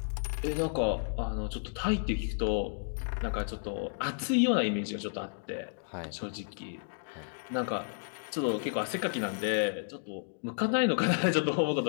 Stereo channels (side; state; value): right; silent; digital silence